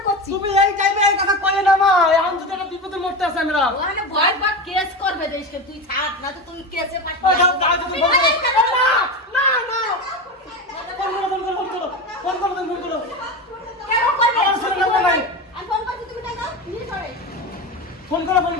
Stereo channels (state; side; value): normal; both; correlation 0.22